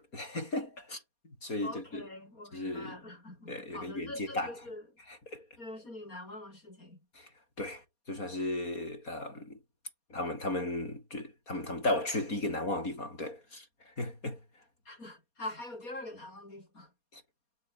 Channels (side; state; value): right; late; 4.2 ms